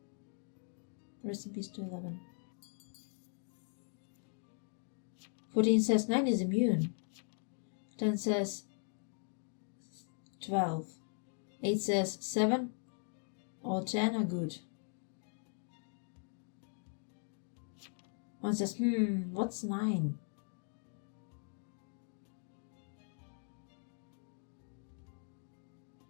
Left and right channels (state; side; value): silent; right; 51 dB below the other